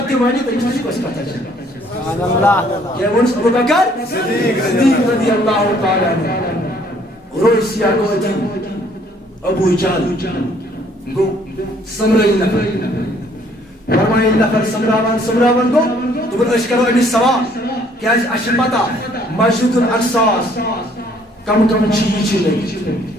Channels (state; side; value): normal; both; correlation 0.62